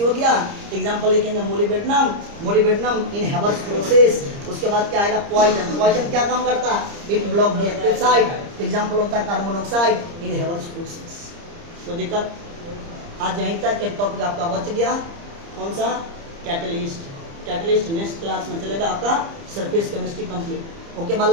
हो गया। एग्जांपल लिखेंगे मोलिबेडनम, मोलिबेडनम इन हेवर्स प्रोसेस। उसके बाद क्या आएगा? पॉइजन। पॉइजन क्या काम करता है? It block the active site. Example होता है कार्बन मोनोऑक्साइड इन हेवर्स प्रोसेस। तो दिक्कत आज यहीं तक एक टॉपिक आपका बच गया। कौन सा? कैटलिस्ट। कैटलिस्ट नेक्स्ट क्लास में चलेगा आपका सरफेस केमिस्ट्री कंप्लीट। ओके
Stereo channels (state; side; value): late; left; 30 ms